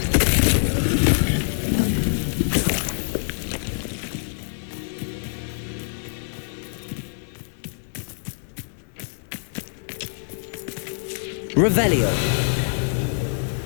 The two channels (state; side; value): silent; right; digital silence